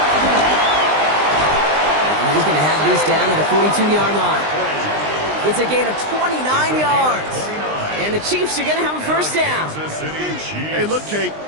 And he's going to have this down at the 42-yard line. It's a gain of 29 yards. And the Chiefs are going to have a first down. Hey, look, Kate,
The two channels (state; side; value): late; left; 20 ms